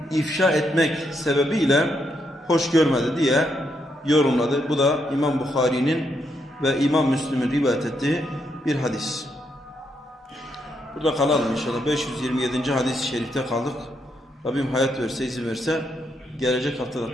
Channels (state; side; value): normal; both; correlation 0.78